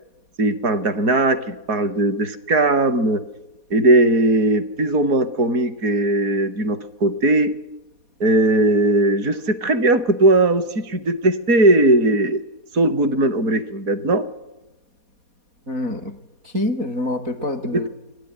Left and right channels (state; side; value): late; left; 4.2 ms